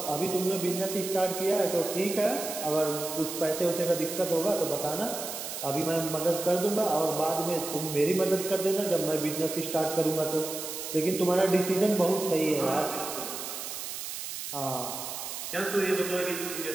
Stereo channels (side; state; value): right; noise; hiss, 7 dB below the sound